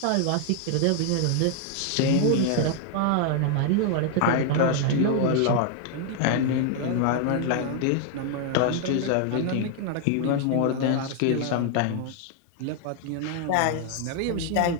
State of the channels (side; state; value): both; different; correlation 0.00